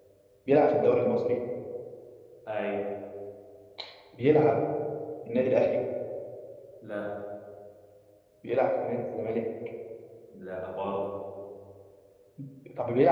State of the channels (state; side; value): identical; both; correlation 1.00